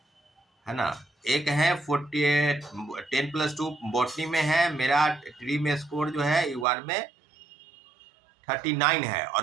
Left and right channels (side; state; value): left; drops out; at 6.7 s